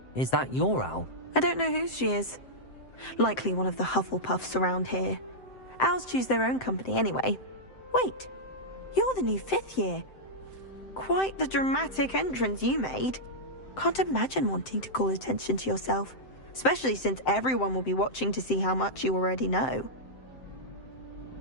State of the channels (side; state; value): right; late; 7.7 ms